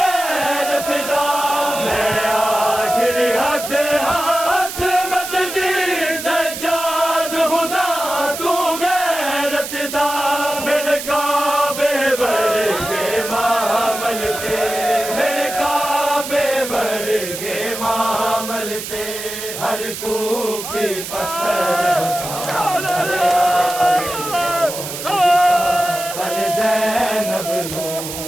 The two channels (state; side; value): noise; right; hiss, 8 dB below the sound